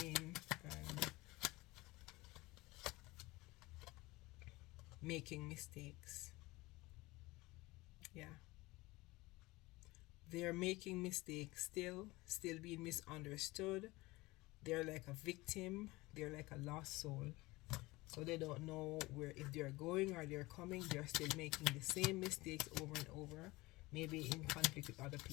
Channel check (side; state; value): right; quieter; 21.2 dB